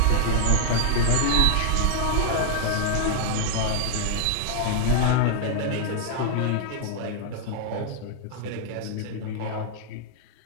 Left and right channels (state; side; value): different; both; correlation -0.01